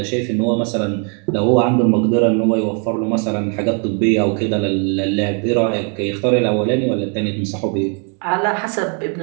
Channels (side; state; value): left; quieter; 39.0 dB